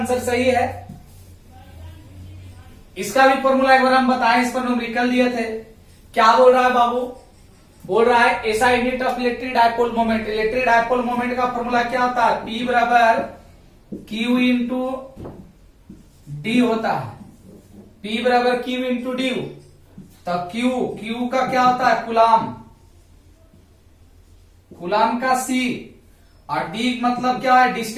सही है। इसका भी फॉर्मूला एक बार हम बताएं, इस पर न्यूमेरिकल दिए थे। क्या बोल रहा है बाबू, बोल रहा है ऐसा unit of electric dipole moment, electric dipole moment का फॉर्मूला क्या होता है, P बराबर Q इंटू डी होता है, P बराबर Q इंटू डी। तो Q का क्या होता है, कुलाम, कुलाम का C, और D मतलब क्या है,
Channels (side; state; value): both; identical; correlation 1.00